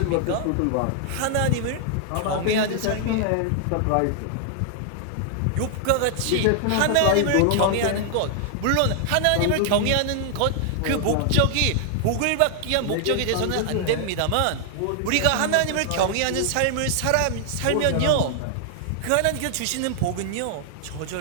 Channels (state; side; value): different; both; correlation 0.00